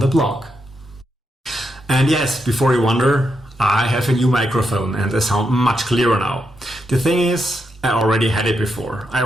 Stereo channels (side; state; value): both; normal; correlation 0.83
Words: the blog. And yes, before you wonder, I have a new microphone and I sound much clearer now. The thing is, I already had it before. I